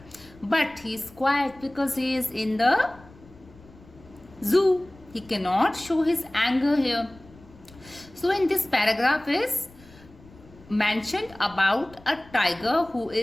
But he is quiet because he is in the zoo. He cannot show his anger here. So in this paragraph is mentioned about a tiger who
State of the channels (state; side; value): noise; left; rumble, 24 dB below the sound